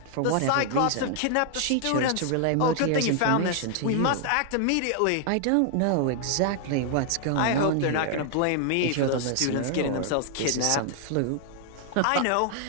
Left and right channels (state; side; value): different; both; correlation 0.00